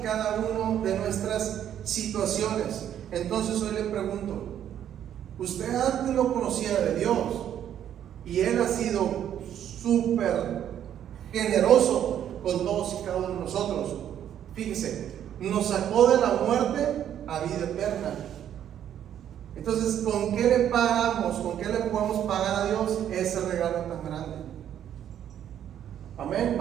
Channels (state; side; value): quieter; left; 10.2 dB